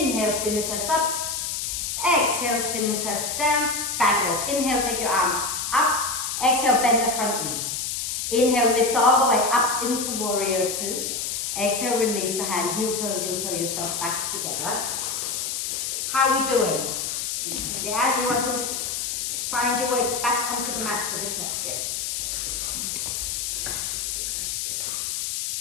spin the chest up. Exhale, spin the chest down. Fabulous. Inhale, take your arm up. Exhale, bend the front knee. Inhale, lift all the way up into warrior two. Exhale, release the hand. Heel toe yourself back together. How are we doing? Yeah, you want to find your way back onto the mat for this next bit.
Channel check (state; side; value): noise; left; hiss, 2 dB below the sound